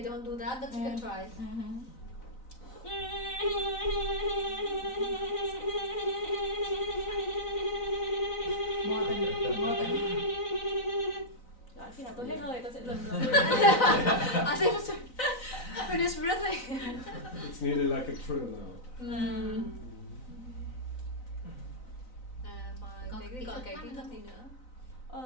don't do that, but you can try. Đó, khi nào tôi hết hơi tôi sẽ dừng rồi. I think finish breathing. It's nearly like a trill now. Và cái còn cái kỹ thuật gì nữa?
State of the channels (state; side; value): late; right; 3.9 ms